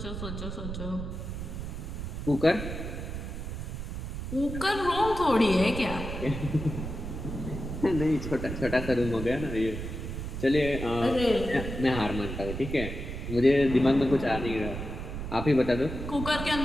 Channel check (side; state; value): right; noise; rumble, 6 dB below the sound